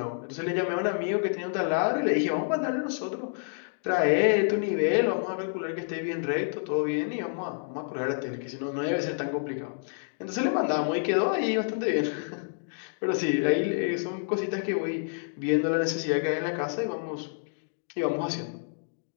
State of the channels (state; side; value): silent; right; digital silence